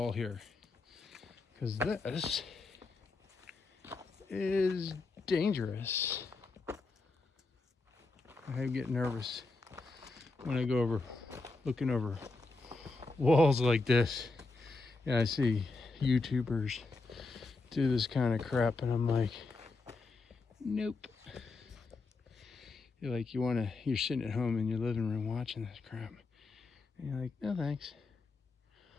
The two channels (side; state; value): right; quieter; 3.6 dB